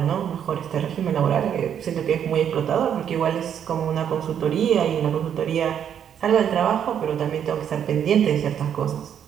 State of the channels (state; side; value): quieter; left; 8.9 dB